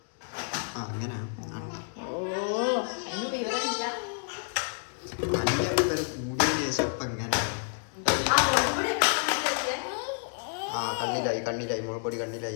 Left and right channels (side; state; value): right; silent; digital silence